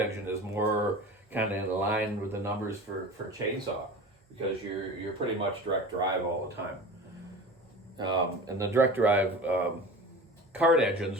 is more kind of in line with the numbers for chainsaw, because you're pretty much direct drive all the time. And the direct drive kart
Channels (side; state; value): both; normal; correlation 0.34